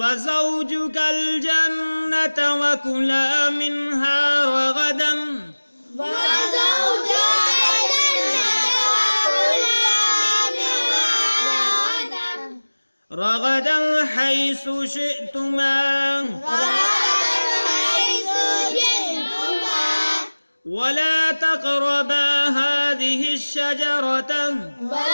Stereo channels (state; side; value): inverted; both; correlation -1.00